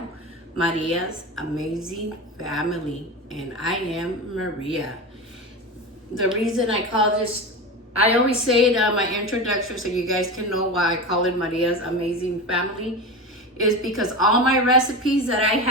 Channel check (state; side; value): normal; both; correlation 0.24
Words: Maria's Amazing Family, and I am Maria. The reason I call this, I always say it on my introduction so you guys can know why I call it Maria's Amazing Family, is because all my recipes that I